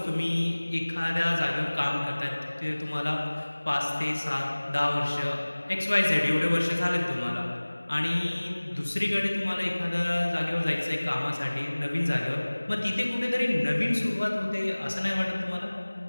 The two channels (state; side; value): inverted; both; correlation -1.00